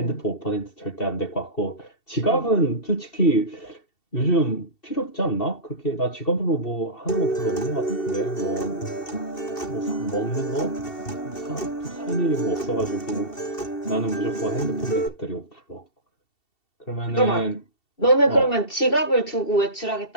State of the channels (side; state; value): right; late; 2.7 ms